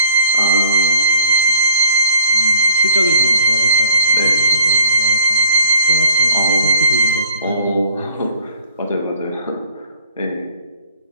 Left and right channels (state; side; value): inverted; both; correlation -0.56